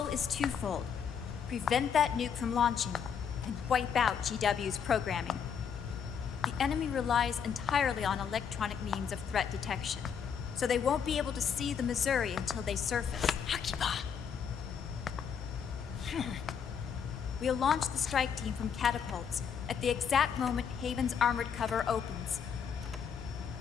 is twofold. Prevent that nuke from launching, and wipe out GW's programming. The enemy relies entirely on electronic means of threat detection, so they won't be able to see the Missouri until they surface. Akiba! We'll launch the strike team from catapults at the exact moment Haven's armored cover opens.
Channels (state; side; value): quieter; right; 7.3 dB